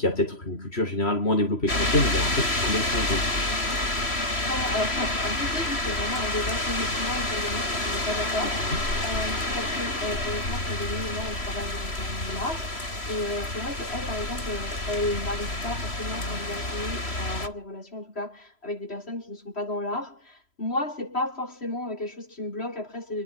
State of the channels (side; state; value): right; late; 3.0 ms